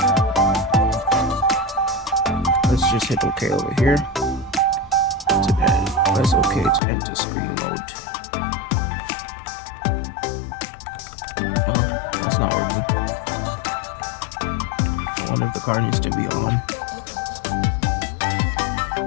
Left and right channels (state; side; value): drops out; right; at 6.8 s